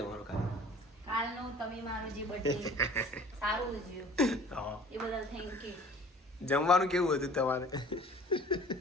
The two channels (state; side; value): normal; both; correlation 0.48